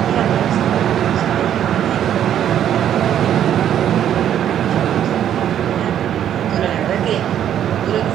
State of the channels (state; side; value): quieter; left; 10.2 dB